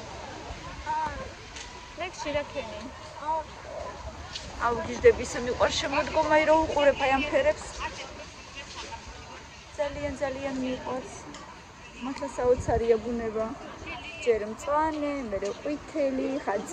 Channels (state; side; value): identical; both; correlation 1.00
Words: ლექსი რა ქენი? აუგიჟდები ისე მიყვარს შემოდგომა, რომ უყურებ აი ამ ფერებს. ძალიან მიყვარს. მართლა საოცარია ბუნება. ჯერ მწვანე, მერე ყვითელი, ხან